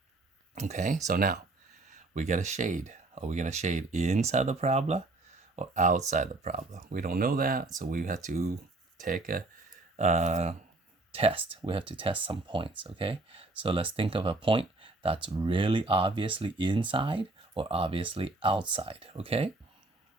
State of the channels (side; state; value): left; quieter; 3.0 dB